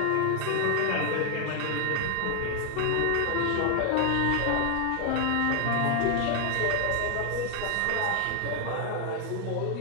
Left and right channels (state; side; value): different; both; correlation 0.00